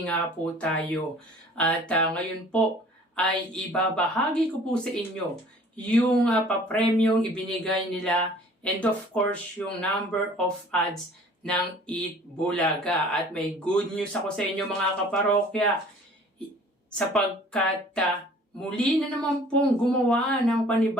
nga po tayo. At ngayon po ay ibabahagi ko po sa inyo yung papremyong ibinigay nila and of course yung number of ads ng Eat Bulaga. At may good news ako sa inyo mga kaparokya sapagkat muli na naman pong gumawa ng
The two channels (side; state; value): both; normal; correlation 0.50